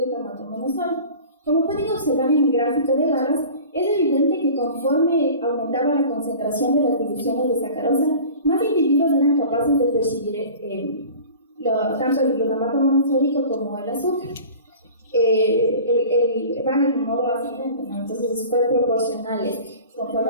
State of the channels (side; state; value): both; inverted; correlation -0.41